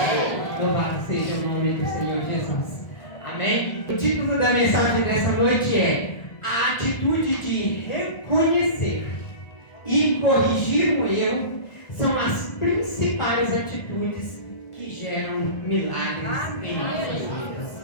Louvado seja o nome do Senhor Jesus. Amém? O título da mensagem dessa noite é a atitude de reconhecer e corrigir o erro são as principais atitudes que geram milagres em nossas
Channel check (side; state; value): right; late; 1.4 ms